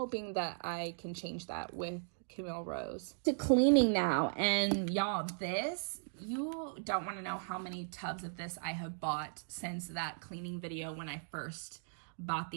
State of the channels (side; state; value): left; silent; digital silence